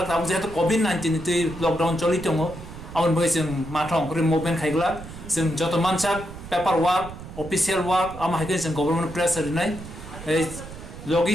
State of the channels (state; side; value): noise; right; rumble, 13 dB below the sound